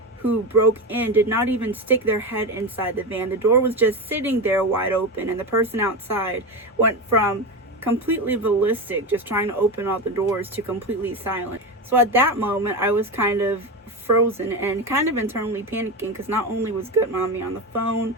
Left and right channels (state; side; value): normal; both; correlation 0.18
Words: who broke in did not even stick their head inside the van. The door was just sitting there wide open, and the person outside went from completely ballistic, just trying to open all the doors, to completely silent. So at that moment, I was kind of frozen and kind of internally panicking because not only was Goodmommy on the phone,